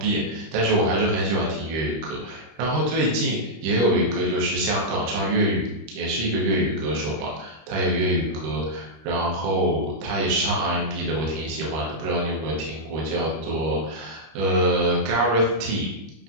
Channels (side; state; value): left; late; 25 ms